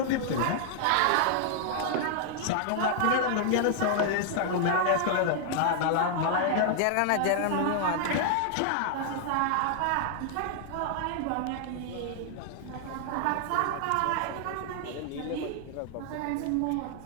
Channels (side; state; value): both; different; correlation -0.01